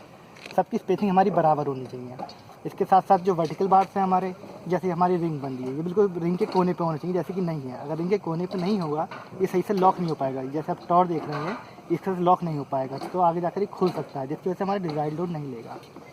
सबकी स्पेसिंग हमारी बराबर होनी चाहिए। इसके साथ साथ जो वर्टिकल बार्स हैं हमारे, जैसे हमारी रिंग बन रही है ये बिल्कुल रिंग के कोने पे होना चाहिए, जैसे कि नहीं है। अगर रिंग के कोने पे नहीं होगा ये सही से लॉक नहीं हो पाएगा। जैसे आप टॉर देख रहे हैं इससे लॉक नहीं हो पाएगा, तो आगे जाकर ये खुल सकता है, जिसकी वजह से हमारा डिज़ाइन लोड नहीं लेगा।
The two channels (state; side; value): identical; both; correlation 1.00